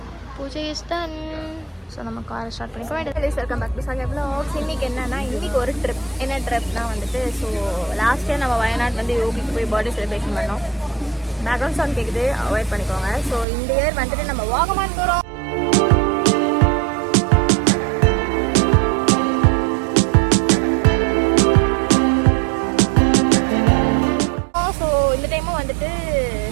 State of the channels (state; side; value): drops out; left; at 13.5 s